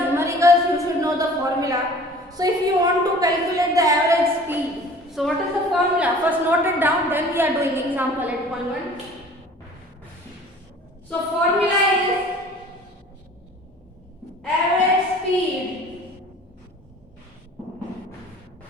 you should know the formula. So if you want to calculate the average speed, so what is the formula? First note it down, then we are doing example 8.1. So formula is average speed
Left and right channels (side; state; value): both; normal; correlation 0.47